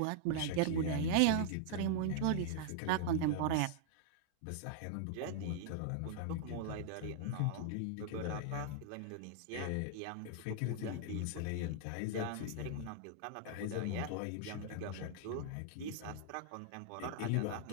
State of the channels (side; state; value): both; different; correlation -0.01